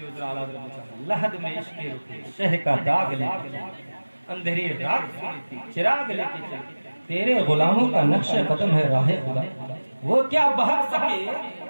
हुज़ूर आला हज़रत ने कहा, लहद में इश्क़ रुके शह का दाग लेके, अंधेरी रात सुनी थी चिराग लेके चले, तेरे गुलामों का नक्श कदम है राहे खुदा, वो क्या बहक सके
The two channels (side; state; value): both; inverted; correlation -1.00